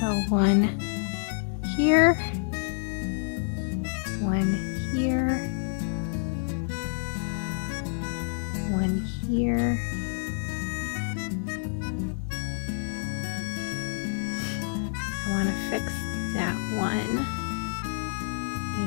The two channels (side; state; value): right; silent; digital silence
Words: one here, one here, one here, I want to fix that one,